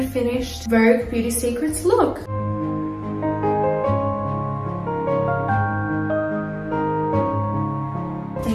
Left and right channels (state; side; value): identical; both; correlation 1.00